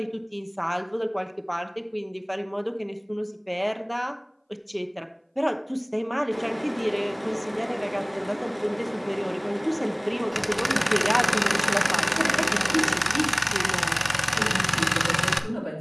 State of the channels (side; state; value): both; identical; correlation 1.00